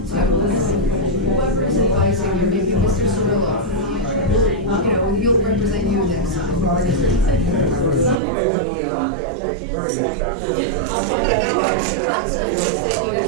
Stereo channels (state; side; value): drops out; left; at 8.2 s